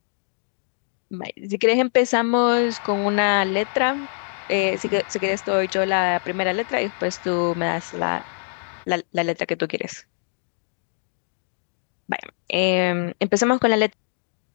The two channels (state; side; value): silent; right; digital silence